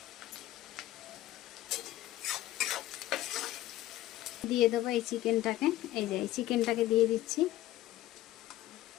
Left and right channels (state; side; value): quieter; right; 15.0 dB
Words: দিয়ে দেবো এই চিকেনটাকে, এই যে এই চিকেনটাকে দিয়ে দিচ্ছি।